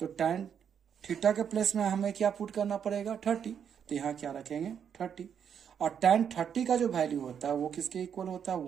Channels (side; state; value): left; quieter; 8.0 dB